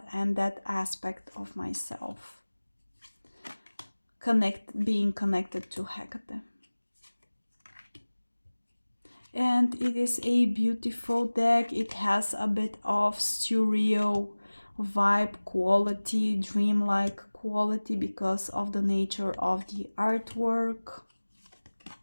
and that aspect of myself, being connected to Hecate. And it is a beautiful deck. It has a bit of surreal vibe quality, dreamlike quality, because of the nature of the artwork.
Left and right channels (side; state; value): both; inverted; correlation -1.00